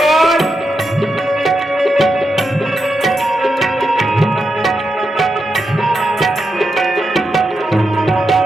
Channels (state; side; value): normal; both; correlation 0.86